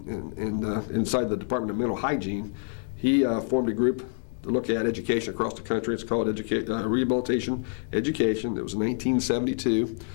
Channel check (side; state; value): right; silent; 60 dB below the other